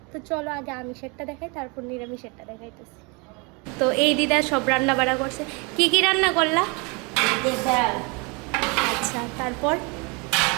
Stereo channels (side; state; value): left; quieter; 30.4 dB